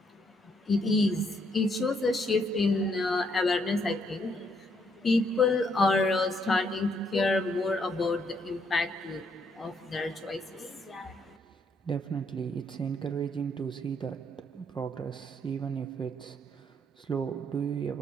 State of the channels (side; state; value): both; normal; correlation 0.72